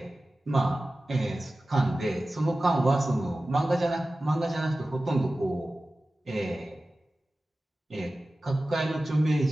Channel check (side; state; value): both; normal; correlation 0.96